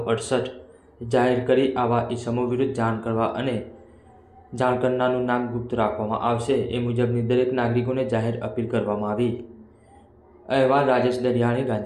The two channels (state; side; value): identical; both; correlation 1.00